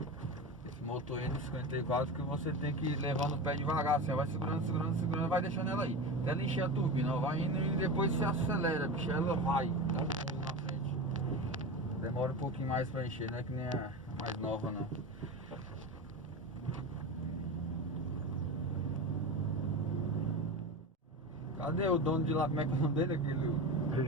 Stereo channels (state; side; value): normal; both; correlation 0.25